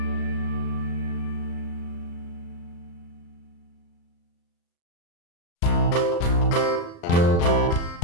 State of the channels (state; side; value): late; right; 35 ms